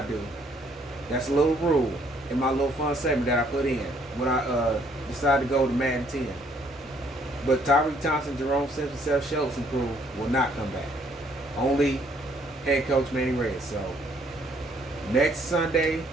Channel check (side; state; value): both; normal; correlation 0.65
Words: do. That's a little rule in my little fun segment that I put in when I decided to go to Madden 10. But Tyreek Thompson, Jerome Simpson, Seth Schultz and crew will not come back. Only head coach Manny Reyes. So next Sunday